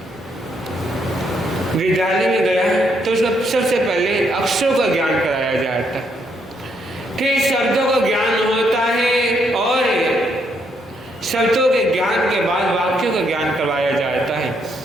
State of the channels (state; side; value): normal; both; correlation 0.74